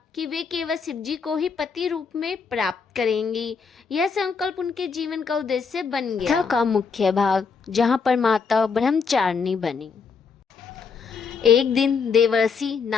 कि वे केवल शिवजी को ही पति रूप में प्राप्त करेंगी। यह संकल्प उनके जीवन का उद्देश्य बन गया। कथा का मुख्य भाग, जहाँ पर माता ब्रह्मचारिणी बनी। एक दिन देवर्षि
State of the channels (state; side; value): quieter; right; 5.5 dB